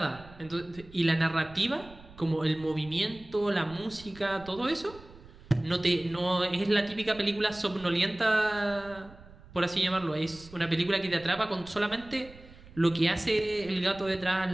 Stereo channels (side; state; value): right; noise; rumble, 20 dB below the sound